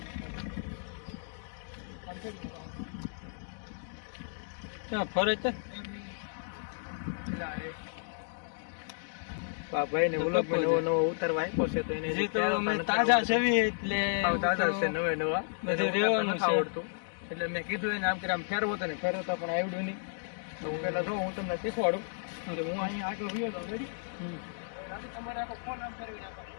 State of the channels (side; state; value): right; silent; digital silence